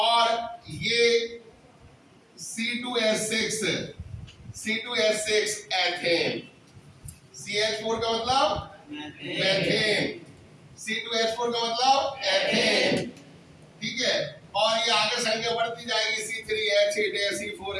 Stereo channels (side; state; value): both; identical; correlation 1.00